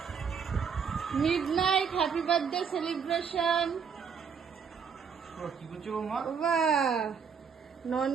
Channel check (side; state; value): left; quieter; 6.5 dB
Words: Midnight happy birthday celebration. কি করছো মা? বাহ,